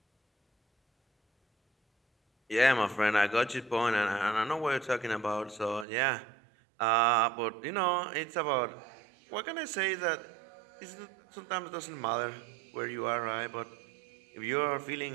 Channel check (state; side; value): drops out; left; at 5.9 s